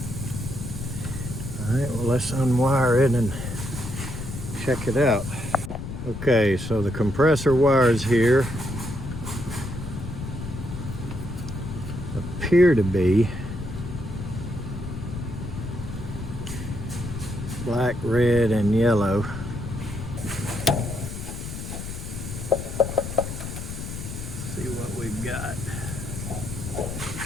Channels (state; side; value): noise; left; rumble, 7 dB below the sound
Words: Alright, well, let's unwire it and check it out. Okay, so the compressor wires here appear to be black, red, and yellow. See what we've got.